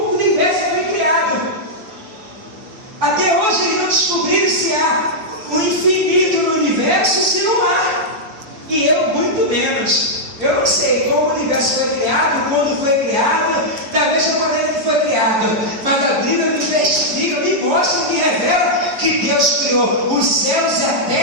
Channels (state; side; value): late; left; 6.9 ms